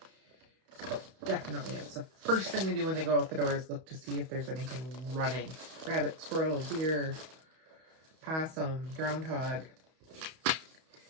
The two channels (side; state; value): left; late; 31 ms